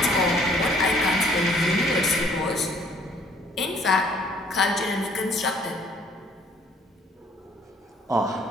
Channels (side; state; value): both; normal; correlation 0.60